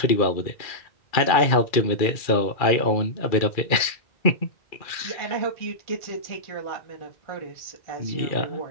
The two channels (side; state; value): right; late; 2.4 ms